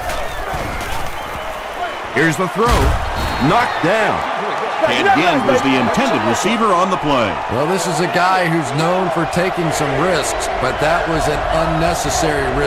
Here's the throw. Knocked down. And again was the intended receiver on the play. Well, this is a guy who's known for taking some risks, but that was an unnecessary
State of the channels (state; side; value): identical; both; correlation 1.00